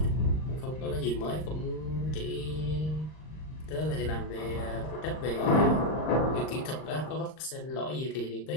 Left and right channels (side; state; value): right; late; 39 ms